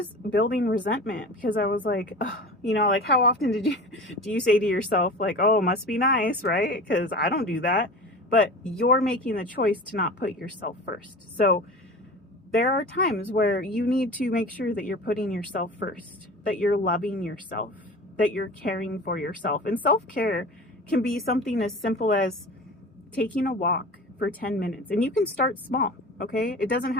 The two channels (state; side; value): normal; both; correlation 0.35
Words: building resentment because I was like, oh, like how often do you say to yourself, like, oh, must be nice, right? Because I don't do that. But you're making the choice to not put yourself first. So there are times where you need to make sure that you're putting yourself first, that you're loving yourself, that you're caring for yourself. And self-care can be something as simple as taking a walk for 10 minutes. And you can start small, okay? It doesn't